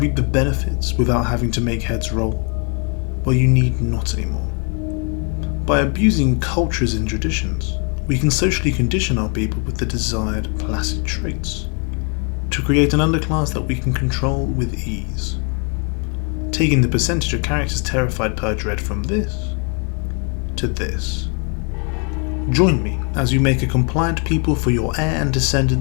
the benefits without having to make heads roll? Well, you need not anymore. By abusing cultures and traditions, we can socially condition our people with the desired placid traits, to create an underclass that we can control with ease. Taking the percentage of characters terrified per dread from this to this. Join me as you make a compliant people for your heir and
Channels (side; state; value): right; quieter; 37.1 dB